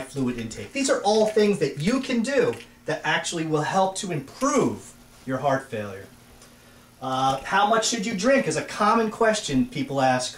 fluid intake. These are all things that you can do that actually will help to improve your heart failure. How much should you drink is a common question people ask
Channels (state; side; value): identical; both; correlation 1.00